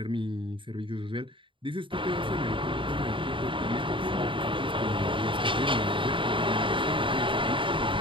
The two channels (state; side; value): late; left; 0.25 ms